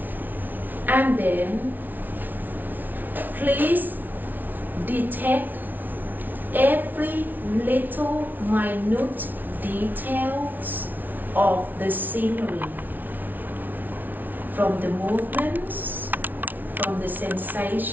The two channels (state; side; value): late; left; 0.085 ms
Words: And then please detect every little minute details of the scenery, from the movements, from the